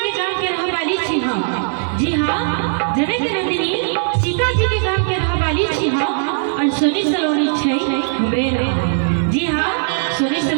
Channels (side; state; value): left; silent; digital silence